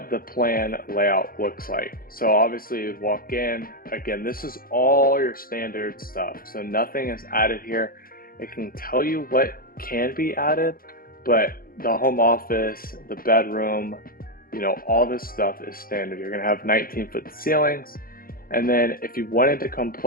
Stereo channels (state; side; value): late; right; 0.42 ms